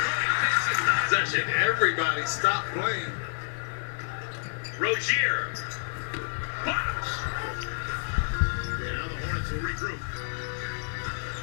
Cody takes his possession. Everybody stop playing. Rozier. Box. And now the Hornets will regroup.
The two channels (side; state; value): right; silent; 59 dB below the other